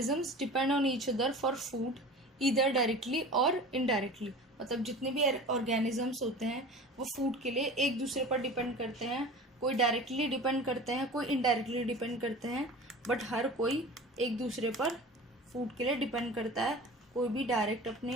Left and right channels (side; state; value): both; normal; correlation 0.37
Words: depend on each other for food either directly और इनडायरेक्टली. मतलब जितने भी ऑर्गेनिजम्स होते हैं वो फूड के लिए एक दूसरे पर डिपेंड करते हैं. कोई डायरेक्टली डिपेंड करते हैं, कोई इनडायरेक्टली डिपेंड करते हैं, बट हर कोई एक दूसरे पर फूड के लिए डिपेंड करता है. कोई भी डायरेक्ट